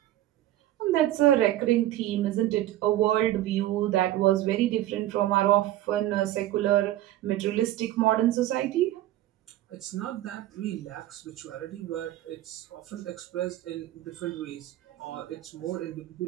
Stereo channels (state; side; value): quieter; left; 14.1 dB